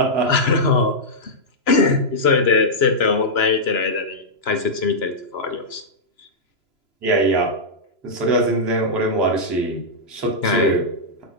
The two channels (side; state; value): right; late; 3.0 ms